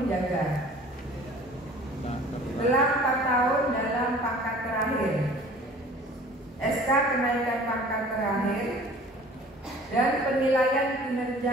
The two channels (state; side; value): normal; both; correlation 0.47